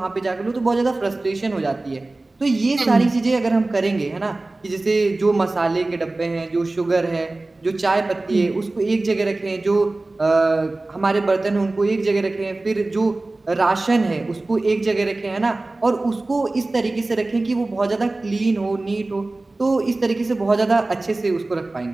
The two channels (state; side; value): quieter; left; 3.0 dB